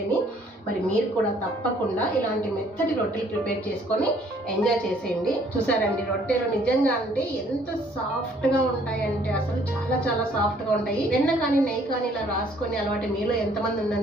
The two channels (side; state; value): both; normal; correlation 0.61